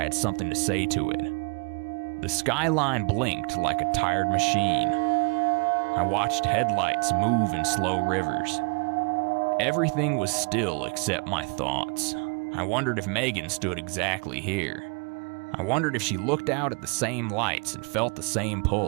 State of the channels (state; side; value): quieter; left; 33.4 dB